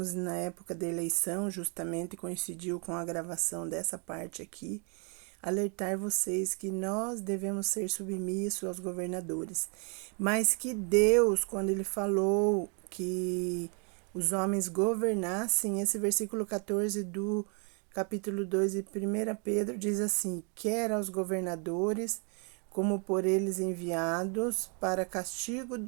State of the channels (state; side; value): quieter; left; 37.1 dB